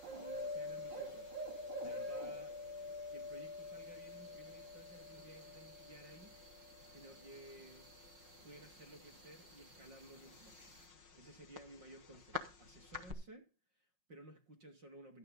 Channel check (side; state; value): left; late; 5.5 ms